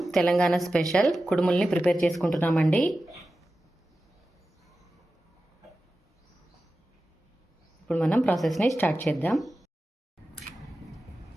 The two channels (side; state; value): both; normal; correlation 0.94